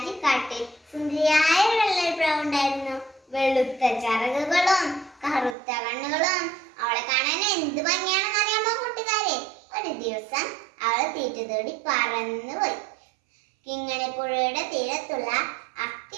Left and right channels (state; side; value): drops out; left; at 5.6 s